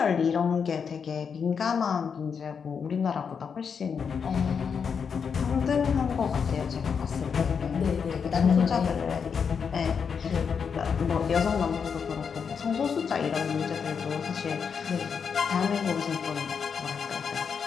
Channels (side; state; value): right; quieter; 6.4 dB